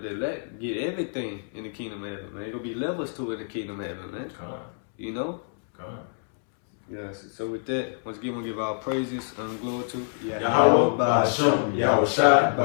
the elect get everything in the kingdom of heaven, man. There's gonna be levels to it in the kingdom of heaven, man. Yes. So with that, once again, we'll give our praises and glory to Yahweh B'Shem Yahushai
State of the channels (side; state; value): right; silent; 61 dB below the other